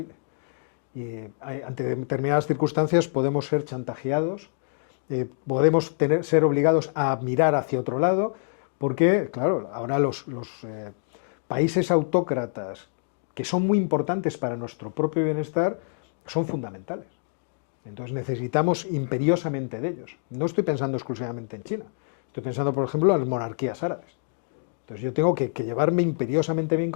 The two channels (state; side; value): silent; right; digital silence